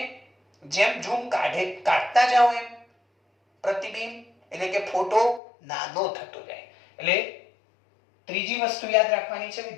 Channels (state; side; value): drops out; right; at 5.4 s